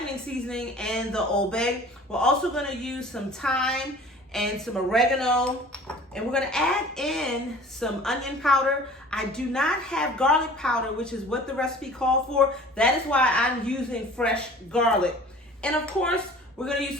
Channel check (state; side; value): normal; both; correlation 0.46